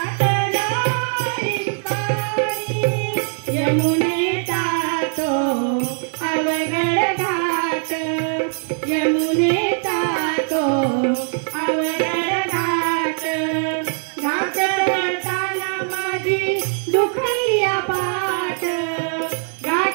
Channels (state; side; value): silent; left; 56 dB below the other